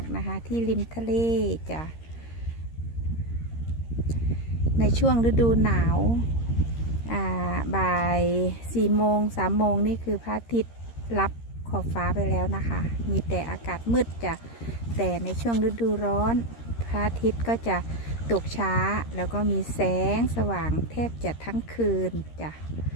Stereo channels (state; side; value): late; right; 13 ms